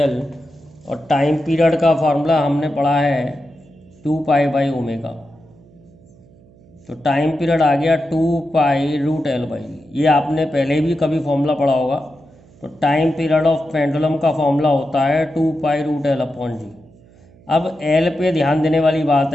और टाइम पीरियड का फार्मूला हमने पढ़ा है 2π/ω। तो टाइम पीरियड आ गया 2π√L/g। ये आपने पहले भी कभी फॉर्मूला पढ़ा होगा। तो टाइम पीरियड ऑफ पेंडुलम का फॉर्मूला होता है 2π√L/g। अब L पे ध्यान देने वाली बात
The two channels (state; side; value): noise; right; hum, 26 dB below the sound